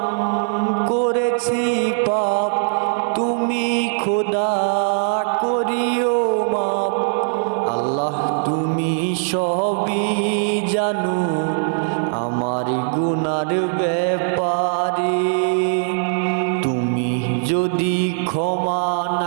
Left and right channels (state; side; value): silent; left; 66 dB below the other